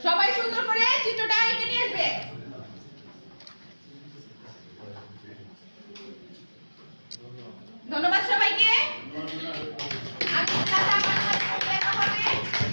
সবাই সুন্দর করে চিত্রটা এঁকে নিয়ে আসবে। ধন্যবাদ সবাইকে। আমি দেখা হবে।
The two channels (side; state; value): both; inverted; correlation -1.00